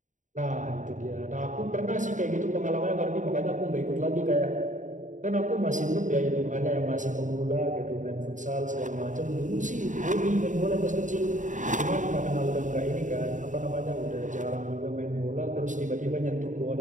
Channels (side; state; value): left; late; 0.36 ms